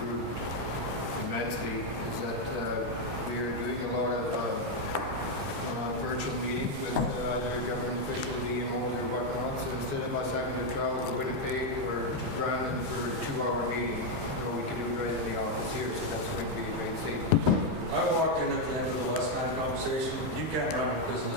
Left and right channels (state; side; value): late; left; 14 ms